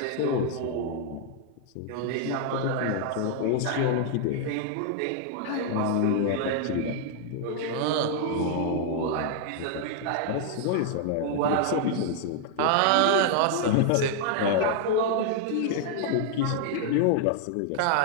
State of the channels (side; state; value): both; different; correlation 0.00